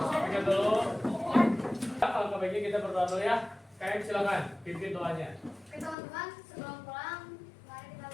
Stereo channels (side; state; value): right; drops out; at 6.0 s